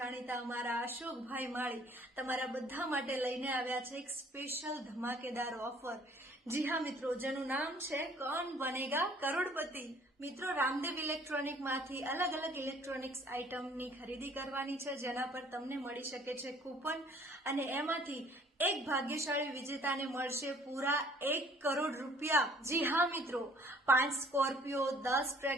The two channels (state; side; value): normal; both; correlation 0.57